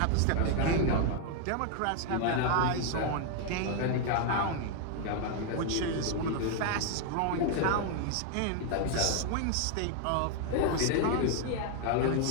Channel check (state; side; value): different; both; correlation 0.00